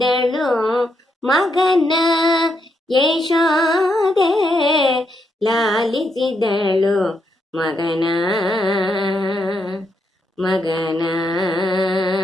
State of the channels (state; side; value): normal; both; correlation 0.79